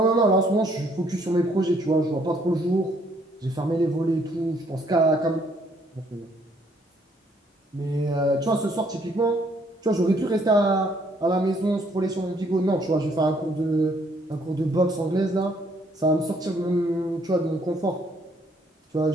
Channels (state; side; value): normal; both; correlation 0.66